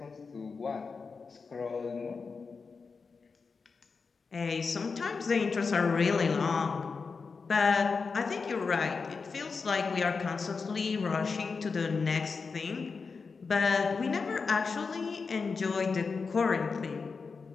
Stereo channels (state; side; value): quieter; right; 4.8 dB